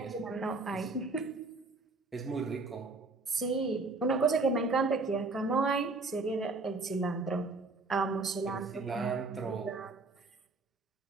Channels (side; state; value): left; quieter; 3.6 dB